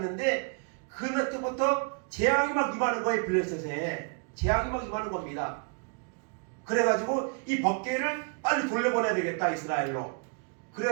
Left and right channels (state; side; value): quieter; left; 39.3 dB